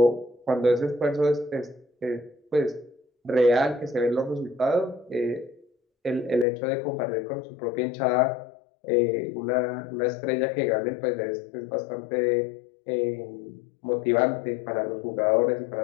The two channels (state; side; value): drops out; right; at 6.5 s